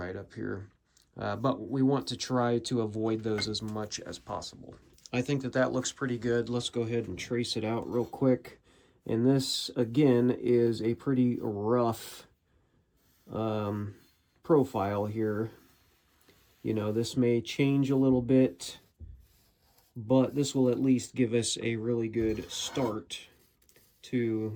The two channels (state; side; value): identical; both; correlation 1.00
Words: up here. But we want to try to avoid those as much as possible. I think that that looks pretty good. Let's go ahead and trace it out real quick. And this, again, is a pretty rough profile here. You know, this may change a little bit, but this will at least give us a really good start to,